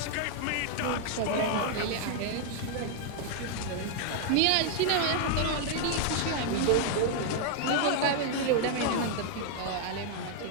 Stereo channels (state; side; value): different; both; correlation 0.00